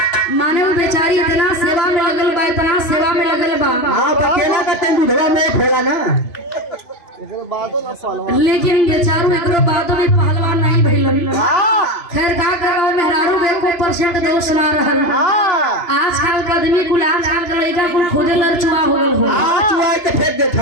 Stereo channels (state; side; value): late; right; 2.9 ms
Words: माने वो बेचारी इतना सेवा में लगल बा इतना सेवा में लगल बा हां बकेला का तन दूधवा में खोला ना एकरो बादो ना पहलवान लेकिन बेचारू एकरो बादो में पहलवान नहीं भइलन खैर का करो मेहरारू के को परसेंट दोष ना रहल आजकल का आदमी कुल आजकल का लड़का कुल खोदे लड़चुआ हो गल हो चुआ के फेंक दे